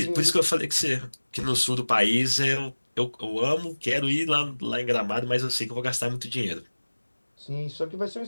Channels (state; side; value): inverted; both; correlation -1.00